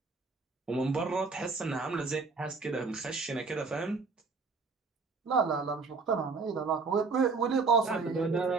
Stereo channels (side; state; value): left; quieter; 4.4 dB